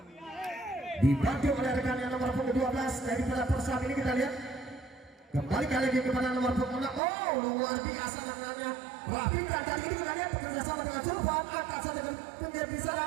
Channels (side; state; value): left; drops out; at 7.0 s